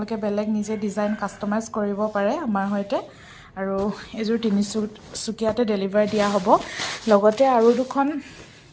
বেলেগ নিজে ডিজাইন কাষ্টমাইজ কৰিব পাৰে আমাৰ সৈতে। আৰু এইযোৰ তিনিচুকীয়াতে ডেলিভাৰ দিয়া হ'ব। লগতে আৰু দুখন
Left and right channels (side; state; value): both; identical; correlation 1.00